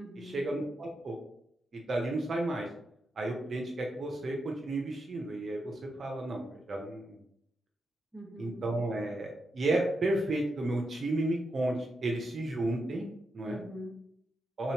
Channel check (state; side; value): normal; both; correlation 0.85